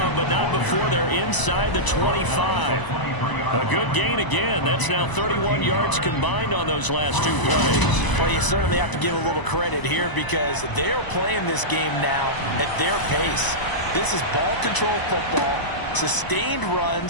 but not before they're inside the 25. A good gain again. That's now 31 yards combined on those last 2 plays. Well, you certainly have to give a little credit here because they're playing this game now at their pace. This is ball control football, sustained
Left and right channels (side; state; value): right; late; 1.0 ms